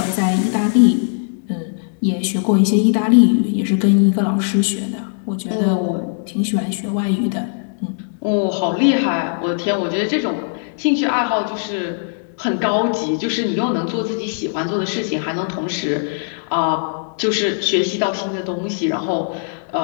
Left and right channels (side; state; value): right; silent; digital silence